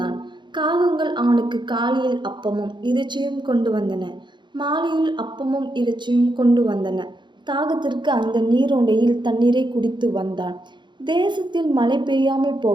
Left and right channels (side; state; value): left; late; 0.22 ms